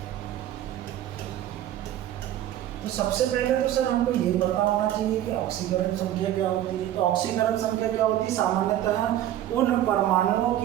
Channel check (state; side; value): quieter; left; 12.5 dB